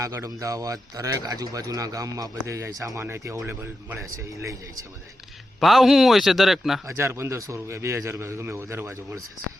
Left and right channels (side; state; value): both; normal; correlation 0.89